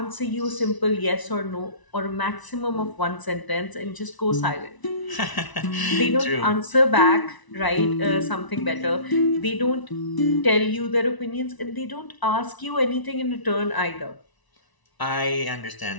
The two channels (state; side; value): late; right; 1.0 ms